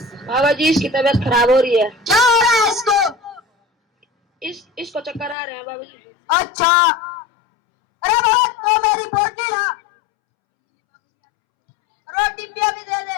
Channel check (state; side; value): drops out; right; at 5.4 s